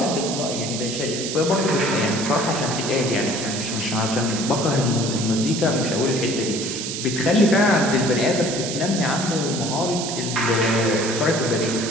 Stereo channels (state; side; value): noise; right; hiss, 5 dB below the sound